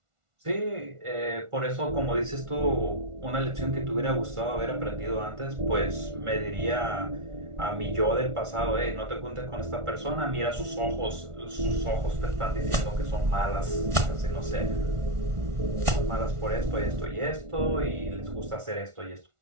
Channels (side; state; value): left; late; 1.4 ms